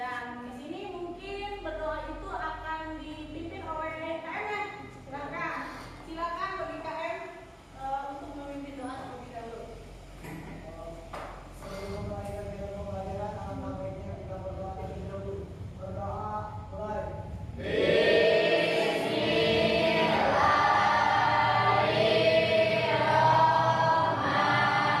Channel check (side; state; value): both; identical; correlation 1.00